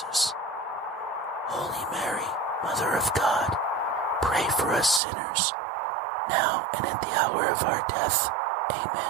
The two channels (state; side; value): drops out; left; at 5.0 s